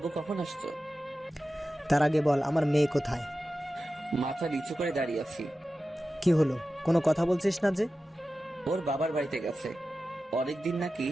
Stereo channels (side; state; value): both; normal; correlation 0.94